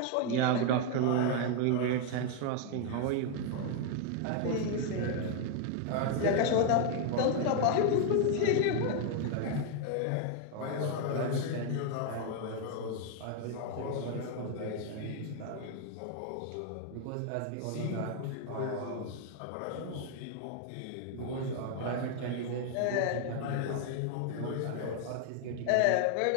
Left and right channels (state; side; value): different; both; correlation 0.00